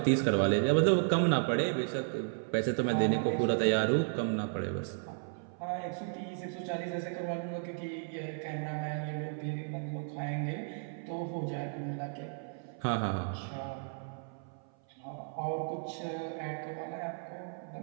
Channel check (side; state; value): left; silent; 55 dB below the other